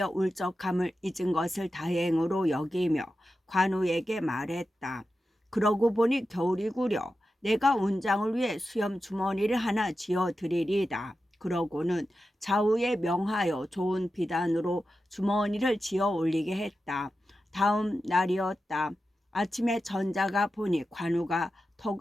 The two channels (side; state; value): both; normal; correlation 0.91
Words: 울적함을 잊은 것을 다행으로 여기며 관우에게 말했다. 그러고 보니 겨울이구려. 내가 운장을 위해 수염 주머니를 하나 지어드리리다. 그러고는 좌우에 명하여 좋은 비단으로 주머니를 지어 올리게 했다. 다음 날이었다. 아침에 전자가 보니 관우가